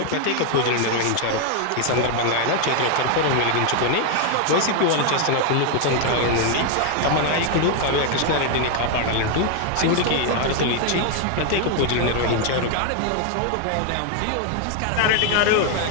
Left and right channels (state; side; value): different; both; correlation 0.01